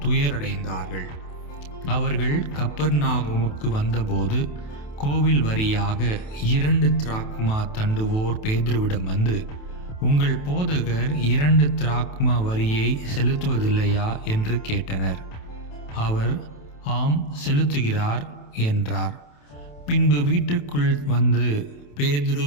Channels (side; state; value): right; late; 28 ms